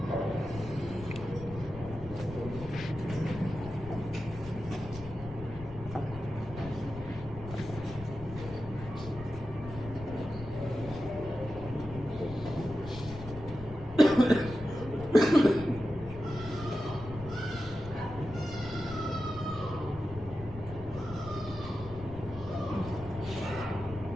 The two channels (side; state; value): left; noise; rumble, 13 dB below the sound